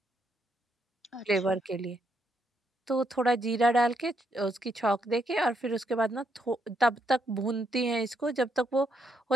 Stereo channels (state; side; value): normal; both; correlation 0.77